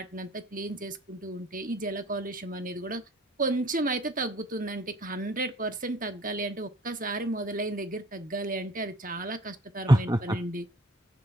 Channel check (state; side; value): normal; both; correlation 0.52